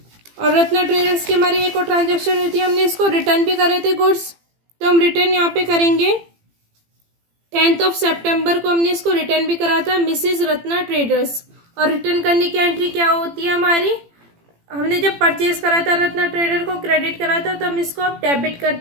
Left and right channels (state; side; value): late; left; 18 ms